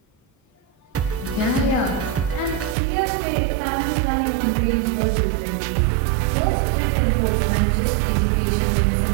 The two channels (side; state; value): left; drops out; at 2.8 s